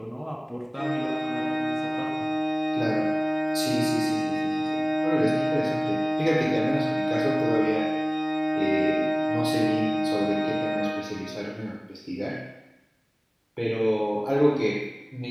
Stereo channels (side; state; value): both; identical; correlation 1.00